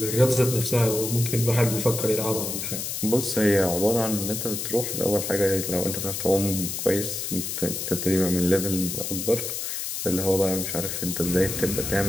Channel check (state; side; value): noise; left; hiss, 4 dB below the sound